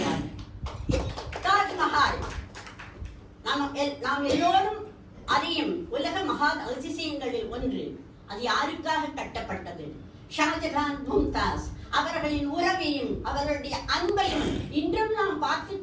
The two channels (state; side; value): identical; both; correlation 1.00